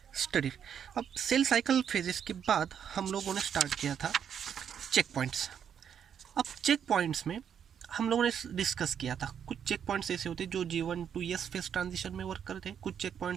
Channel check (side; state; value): left; quieter; 8.3 dB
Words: studied. अब सेल साइकिल फेजेस के बाद हम लोगों ने स्टार्ट किया था चेक पॉइंट्स. अब चेक पॉइंट्स में हम लोगों ने डिस्कस किया था कुछ चेक पॉइंट्स ऐसे होते हैं जो G1 to ES phase transition में वर्क करते हैं, कुछ चेक